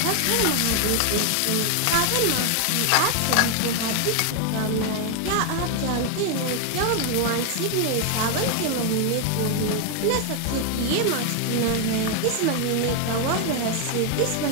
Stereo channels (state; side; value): different; both; correlation 0.01